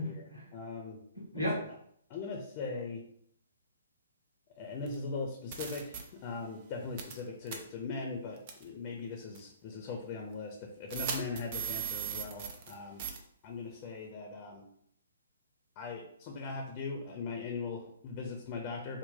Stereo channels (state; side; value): inverted; both; correlation -0.43